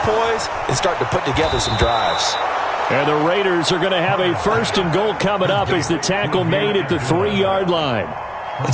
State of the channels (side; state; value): both; identical; correlation 1.00